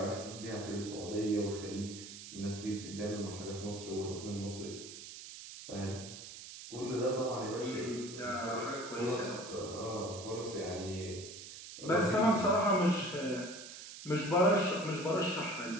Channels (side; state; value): right; noise; hiss, 12 dB below the sound